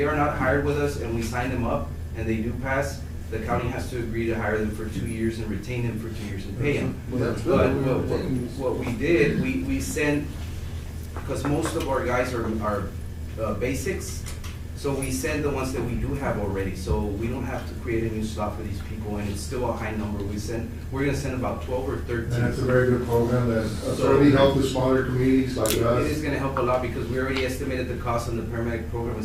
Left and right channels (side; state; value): both; identical; correlation 1.00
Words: are not hired with us and we sign them up and they do pass, the county has to agree to hire them for 2 years and retain them for 2 years and pay them. Well, that's good. But what we did, we sent, because most of our guys are basics, so we send the ones that we do have already, so we don't have to create a new slot for these people, and it's still a high number. We're gonna send about 12 or 13. And that's a very good program that certainly helps with smaller communities like us. It is gonna help a lot, because we already estimated the cost on the paramedic program